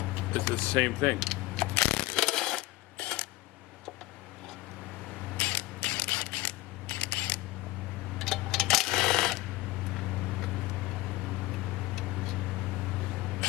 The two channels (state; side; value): quieter; right; 19.5 dB